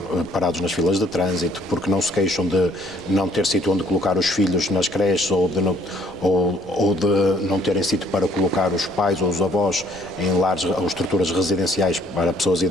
parados nas filas de trânsito, porque não se queixam de não ter sítio onde colocar os filhos nas creches ou de não terem sítio para colocar os pais ou os avós em lares ou estruturas residenciais para pessoas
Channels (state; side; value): noise; left; rumble, 23 dB below the sound